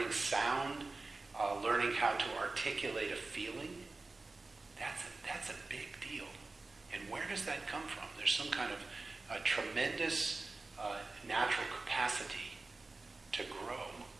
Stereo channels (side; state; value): left; quieter; 3.5 dB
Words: sound, learning how to articulate a feeling, that's a big deal. And where does that come from? There's some kind of a tremendous natural capacity to grow,